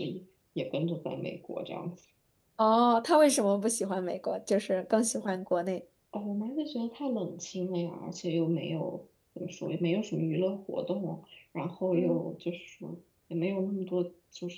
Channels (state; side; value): identical; both; correlation 1.00